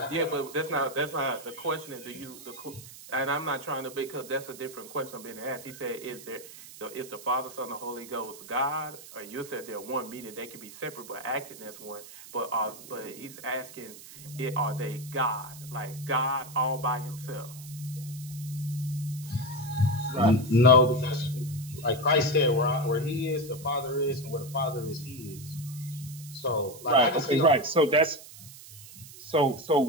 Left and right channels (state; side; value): noise; right; hiss, 16 dB below the sound